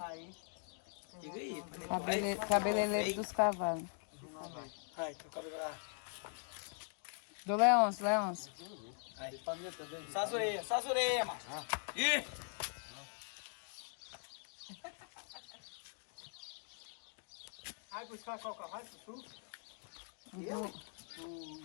Diga aí. Cabeleireiro dos cavalos. Ai, teu cabelo lá. Do Leôncio, Leôncio. Aí. Só as orelhas, macho. Ih! Vai buscar qual carvalho, Sussu?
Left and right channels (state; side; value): silent; right; 50 dB below the other